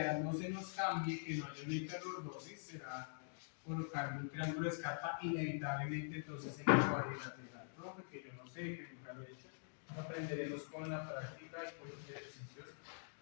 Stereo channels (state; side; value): silent; right; digital silence